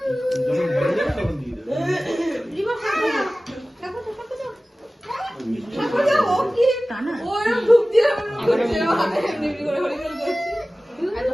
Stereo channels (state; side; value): normal; both; correlation 0.97